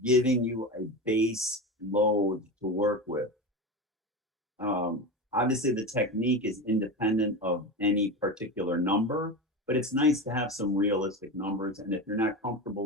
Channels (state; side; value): normal; both; correlation 0.23